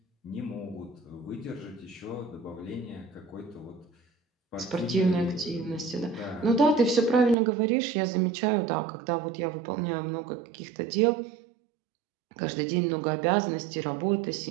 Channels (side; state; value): left; drops out; at 7.4 s